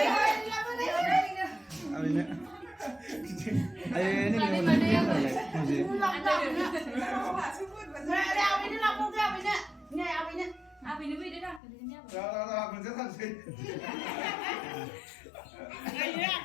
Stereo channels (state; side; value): drops out; right; at 11.6 s